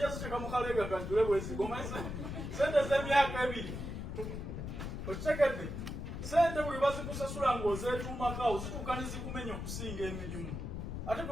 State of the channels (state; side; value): noise; left; rumble, 6 dB below the sound